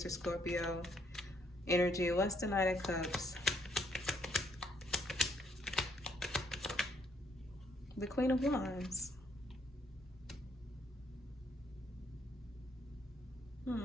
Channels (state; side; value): normal; both; correlation 0.69